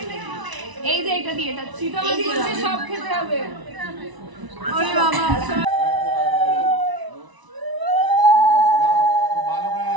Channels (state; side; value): late; left; 1.0 ms